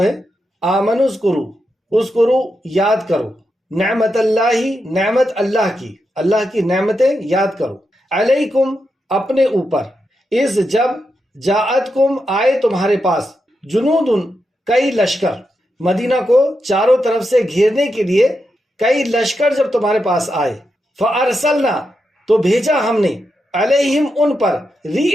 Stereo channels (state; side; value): normal; both; correlation 0.86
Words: آمنو اذکرو یاد کرو، نعمت اللہ نعمت اللہ کی نعمتیں یاد کرو، علیکم اپنے اوپر، اذ جب، جاءتکم آئے تمہارے پاس، جنودن کئی لشکر، مدینہ کو چاروں طرف سے گھیرنے کے لیے کئی لشکر جب تمہارے پاس آئے، فارسلنا تو بھیجا ہم نے، علیہم ان پر،